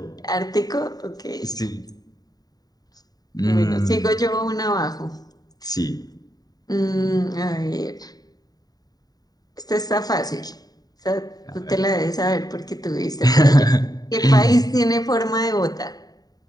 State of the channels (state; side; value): late; right; 0.18 ms